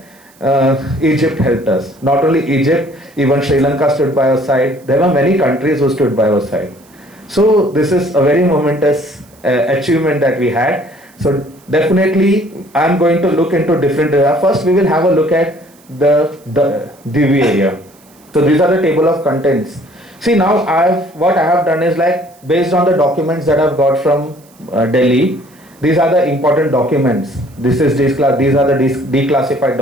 Egypt helped us. Not only Egypt, even Sri Lanka stood by our side. There were many countries who stood by our side. So this is a very momentous achievement that we had. So definitely, I'm going to look into different areas. First, we will have a look at the Divi area. So these are the table of contents. See, now what I have done is like based on the documents that I've got from Delhi. These are the important documents. These are the declassified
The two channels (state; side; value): noise; right; hiss, 29 dB below the sound